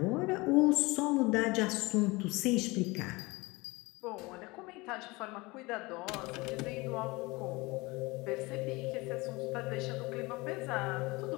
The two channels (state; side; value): quieter; right; 23.6 dB